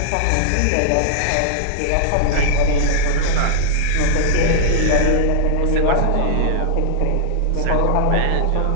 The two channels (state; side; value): different; both; correlation -0.01